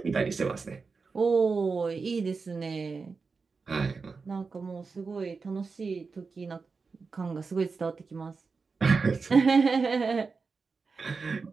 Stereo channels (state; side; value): quieter; left; 4.7 dB